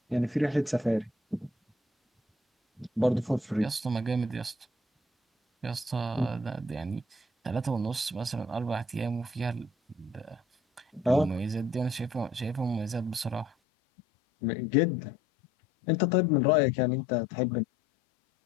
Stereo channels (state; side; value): drops out; right; at 13.5 s